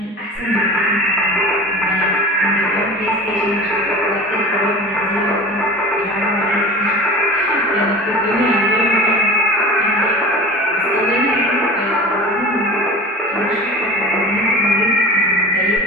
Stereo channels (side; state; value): both; normal; correlation 0.35